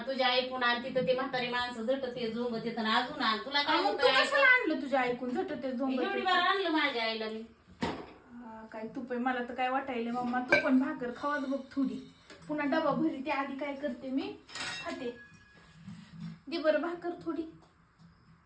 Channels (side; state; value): both; identical; correlation 1.00